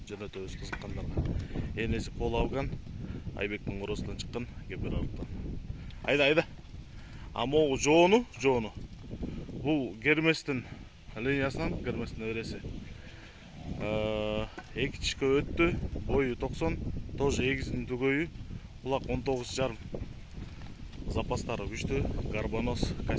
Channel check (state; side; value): identical; both; correlation 1.00